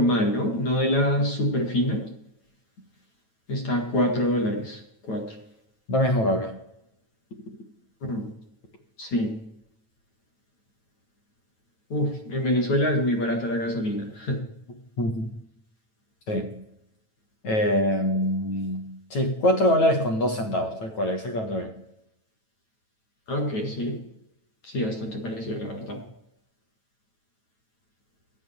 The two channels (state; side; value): late; right; 9.1 ms